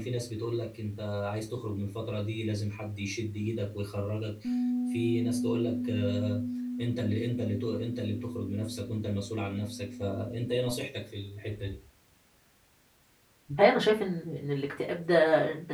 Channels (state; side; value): identical; both; correlation 1.00